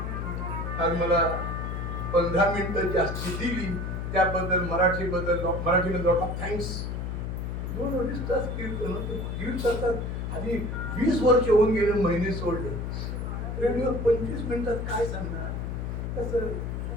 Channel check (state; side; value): noise; left; hum, 4 dB below the sound